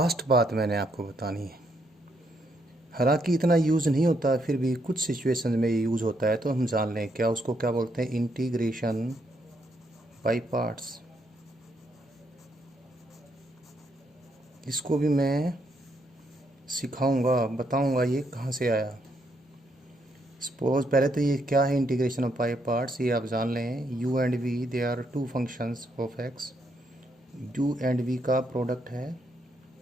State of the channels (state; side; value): normal; both; correlation 0.75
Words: बात मैंने आपको बतानी है। हालांकि इतना यूज़ नहीं होता, फिर भी कुछ सिचुएशन में ये यूज़ होता है, तो हम जान लें क्या उसको क्या बोलते हैं। Integration by parts. इसको भी मैं सिखाऊंगा, बताऊंगा ये कहाँ से आया। सपोज पहले तो ये क्या है इंटीग्रेशन ऑफ बाय पार्ट्स, ये आप जान लें। U and V they are two functions of X. U and V का प्रोडक्ट है